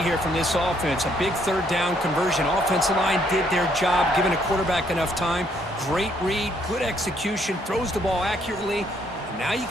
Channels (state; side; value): normal; both; correlation 0.69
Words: here from this offense. A big 3rd down conversion. Offensive line did their job, giving a quarterback enough time. Great read, good execution, throws the ball accurately. And now you